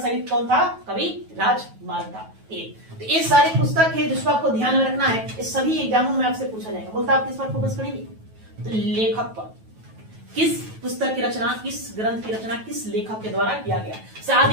कौन था, कवि राजमार्ग था। तो ये सारी पुस्तक है जिसको आपको ध्यान में रखना है। इस सभी एग्जामों में आपसे पूछा जाएगा। बोलता आप किस पर फोकस करेंगे, तो लेखक पर। किस पुस्तक की रचना, किस ग्रंथ की रचना किस लेखक के द्वारा किया गया।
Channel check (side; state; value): left; late; 9.2 ms